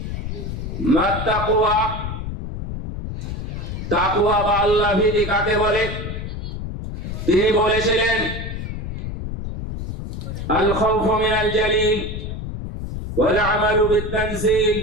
মা তাকওয়া, তাকওয়া বা আল্লাহ ভীতি কাকে বলে? তিনি বলেছিলেন, আল খাউফু মিনাল জালিল ওয়াল আমালু বিত তানজিল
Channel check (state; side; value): noise; left; rumble, 6 dB below the sound